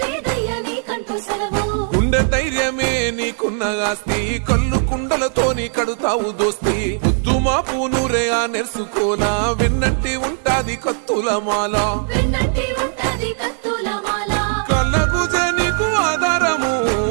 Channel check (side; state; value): left; silent; 59 dB below the other